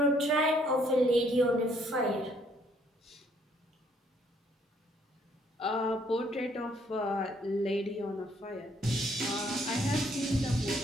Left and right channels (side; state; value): both; normal; correlation 0.66